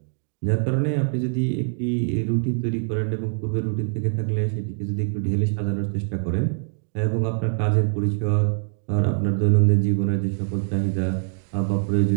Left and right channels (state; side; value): silent; left; digital silence